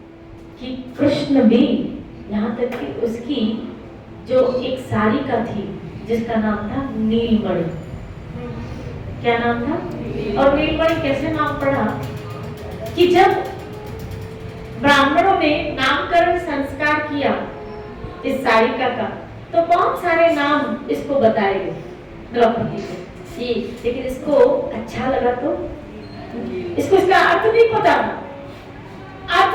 कि कृष्ण भी, यहाँ तक कि उसकी जो एक सारिका थी जिसका नाम था नीलमणि, क्या नाम था? और नीलमणि कैसे नाम पड़ा कि जब ब्राह्मणों ने नामकरण संस्कार किया इस सारिका का, तो बहुत सारे नाम इसको बताए गए द्रौपदी को, लेकिन इसको अच्छा लगा तो इसको इसका अर्थ नहीं पता, अर्थ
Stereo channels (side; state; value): both; identical; correlation 1.00